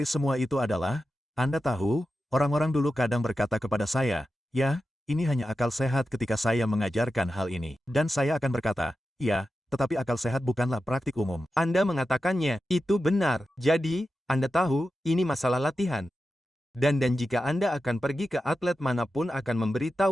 semua itu adalah, Anda tahu, orang-orang dulu kadang berkata kepada saya, ya, ini hanya akal sehat ketika saya mengajarkan hal ini. Dan saya akan berkata, ya, tetapi akal sehat bukanlah praktik umum. Anda mengatakannya, itu benar. Jadi, Anda tahu, ini masalah latihan. Dan jika Anda akan pergi ke atlet manapun akan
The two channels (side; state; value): both; normal; correlation 0.91